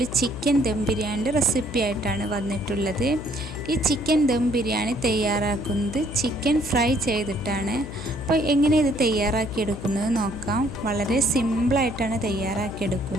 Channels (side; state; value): left; noise; hum, 10 dB below the sound